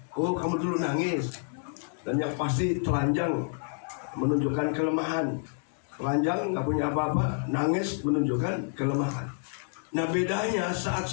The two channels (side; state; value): right; silent; 59 dB below the other